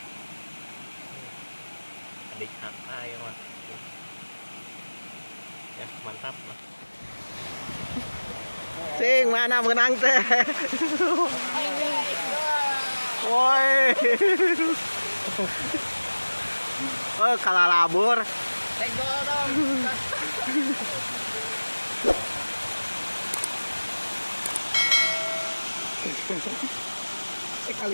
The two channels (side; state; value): both; inverted; correlation -1.00